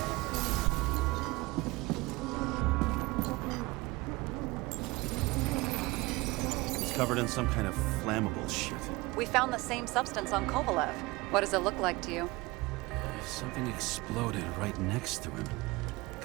He's covered in some kind of flammable shit. We found the same substance on Kovalev. What does it look like to you? Something exploded right next to him.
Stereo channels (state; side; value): quieter; left; 22.5 dB